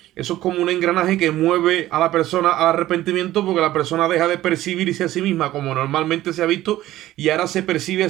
eso es como un engranaje que mueve a la persona al arrepentimiento, porque la persona deja de percibirse a sí misma como normalmente se ha visto y ahora se percibe a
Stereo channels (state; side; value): quieter; left; 14.9 dB